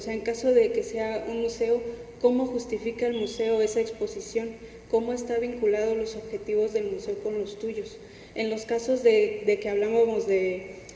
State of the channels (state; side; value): identical; both; correlation 1.00